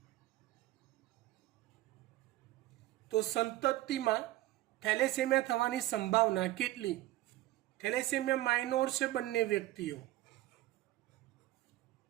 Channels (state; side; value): quieter; left; 16.0 dB